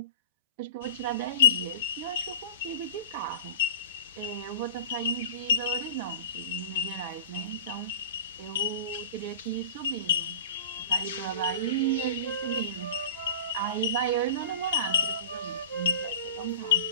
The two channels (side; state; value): both; inverted; correlation -0.37